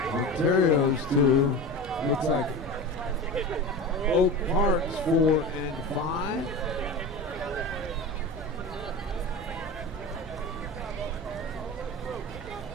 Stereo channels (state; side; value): normal; both; correlation 0.29